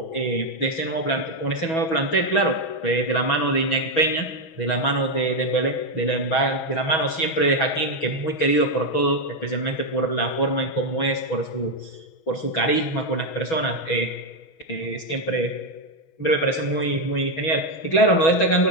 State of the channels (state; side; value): late; right; 6.2 ms